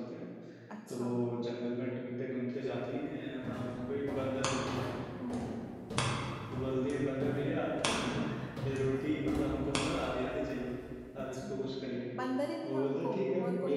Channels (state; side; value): identical; both; correlation 1.00